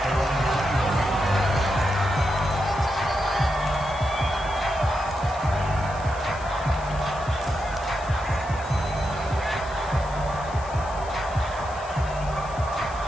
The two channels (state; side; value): noise; left; hiss, 20 dB below the sound